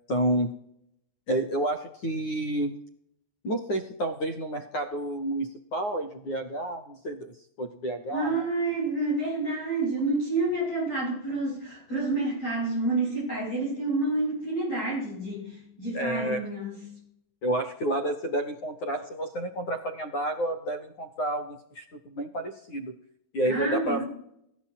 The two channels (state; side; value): late; right; 9.7 ms